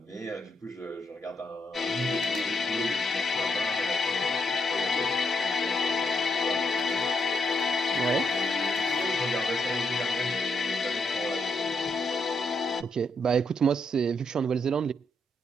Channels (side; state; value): both; normal; correlation 0.78